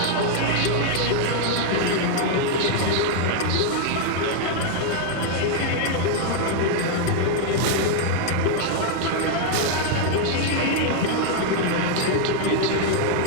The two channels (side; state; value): both; different; correlation 0.00